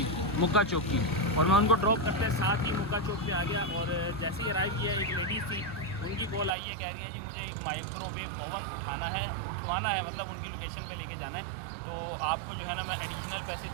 मुक्का चौक की, और मैं उनको ड्रॉप करते साथ ही मुक्का चौक पे आ गया। और जैसे ही अराइव किया, एक लेडीज़ थी, उनकी कॉल आई है, कह रही है जी मुझे एक माइक्रोवेव ओवन उठाना है, उठवाना है, मतलब उनकी लोकेशन पे लेके जाना है। तो आपको जो है ना मैं एडिशनल पैसे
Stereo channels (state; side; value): drops out; left; at 6.5 s